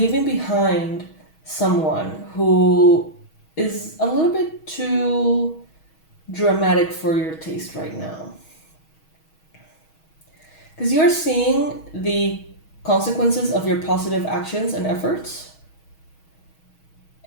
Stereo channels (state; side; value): late; right; 6.3 ms